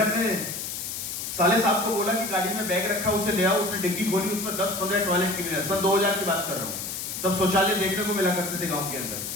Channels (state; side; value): noise; left; hiss, 5 dB below the sound